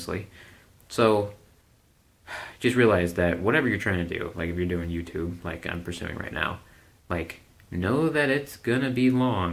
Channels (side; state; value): both; identical; correlation 1.00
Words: So just realize that whatever you're trying to do, like if you're doing YouTube, like I'm pursuing right now, like know that it's gonna be